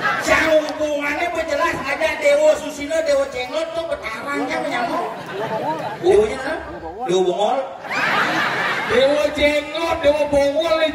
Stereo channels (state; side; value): identical; both; correlation 1.00